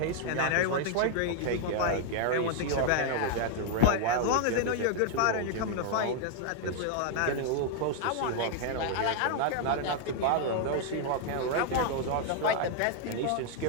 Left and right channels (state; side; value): different; both; correlation 0.00